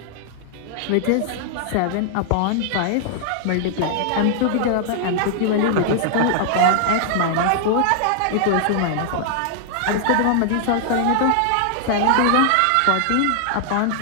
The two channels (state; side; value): different; both; correlation 0.00